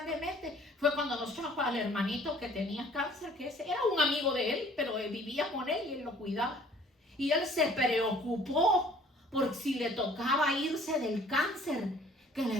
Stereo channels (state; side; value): normal; both; correlation 0.55